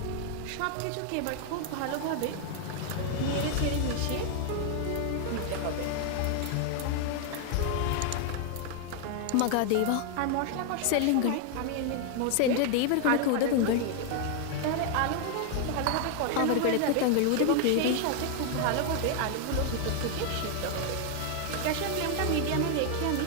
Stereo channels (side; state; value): both; different; correlation 0.00